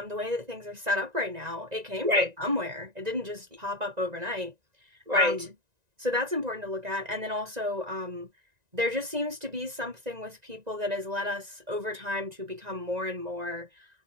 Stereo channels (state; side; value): late; left; 1.9 ms